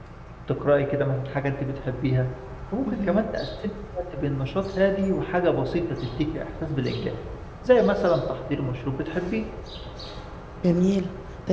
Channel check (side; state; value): both; identical; correlation 1.00